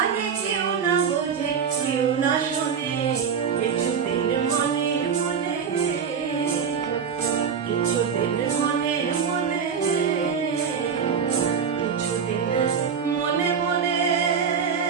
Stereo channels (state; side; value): quieter; left; 6.7 dB